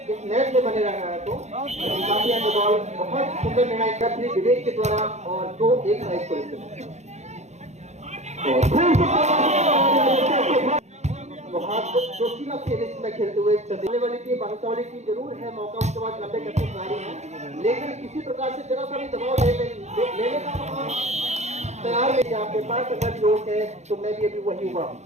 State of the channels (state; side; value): late; left; 0.33 ms